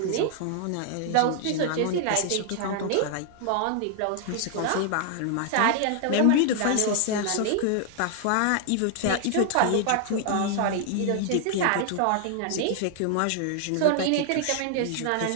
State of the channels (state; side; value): different; both; correlation 0.00